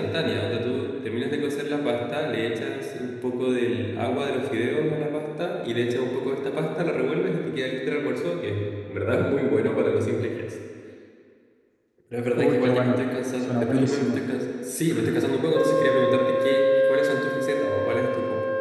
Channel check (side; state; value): both; identical; correlation 1.00